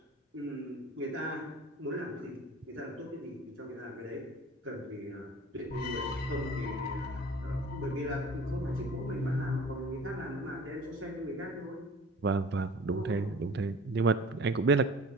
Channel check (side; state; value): both; normal; correlation 0.43